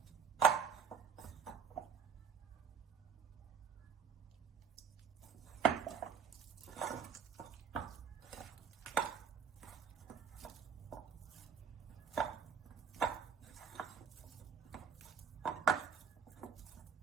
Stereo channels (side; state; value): left; quieter; 6.5 dB